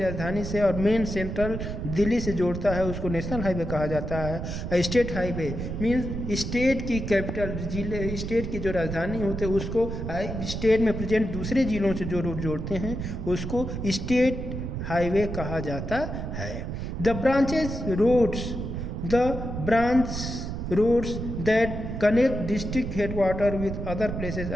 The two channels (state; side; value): noise; right; rumble, 5 dB below the sound